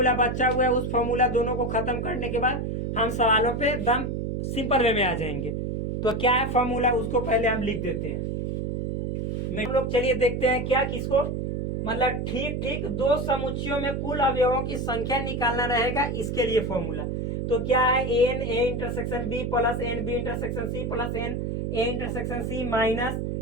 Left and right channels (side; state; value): right; noise; hum, 2 dB below the sound